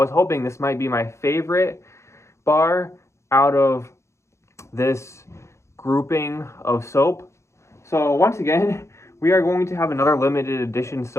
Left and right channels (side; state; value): right; late; 0.14 ms